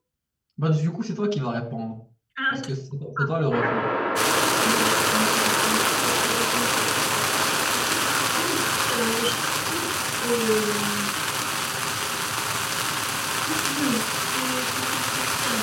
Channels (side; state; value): both; identical; correlation 1.00